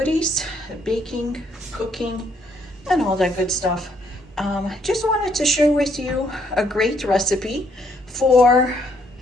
baking, cooking, and all that good stuff. Just wanted to share with you a great recipe for,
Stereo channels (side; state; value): both; normal; correlation 0.69